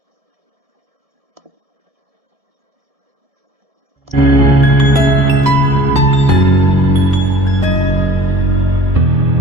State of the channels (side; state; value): left; late; 1.7 ms